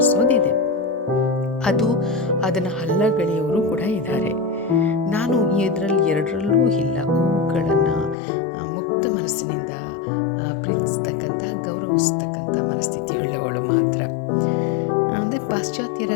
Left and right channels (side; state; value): right; drops out; at 8.2 s